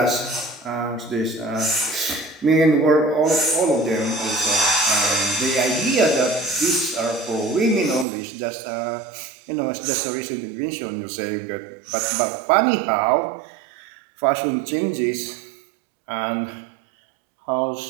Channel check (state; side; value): drops out; left; at 8.1 s